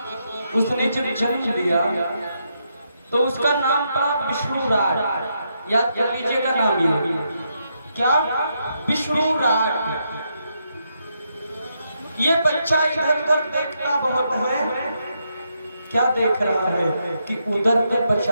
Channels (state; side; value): inverted; both; correlation -0.80